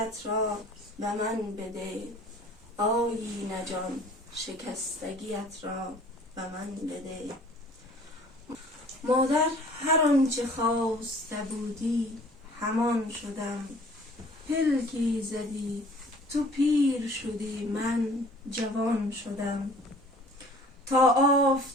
را به من بده. آیینه جان شکستگیت را به من بده. مادر هر آنچه خواسته بودی همان شدم. پلکی زدی تو پیر شدی من جوان شدم. تا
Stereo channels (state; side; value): normal; both; correlation 0.50